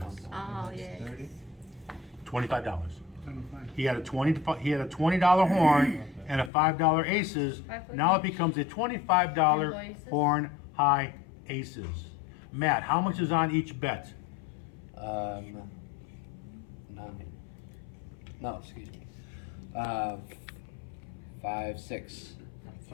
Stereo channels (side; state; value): right; drops out; at 6.5 s